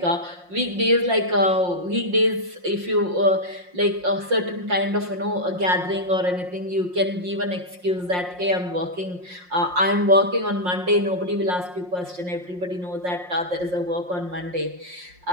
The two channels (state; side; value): late; left; 5.6 ms